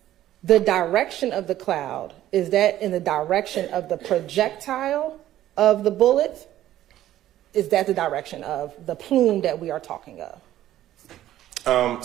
The direction of the cloud, is that in the direction of the projectile of the bullet? Is that the direction of the plume that we are talking of?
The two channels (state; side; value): quieter; left; 13.2 dB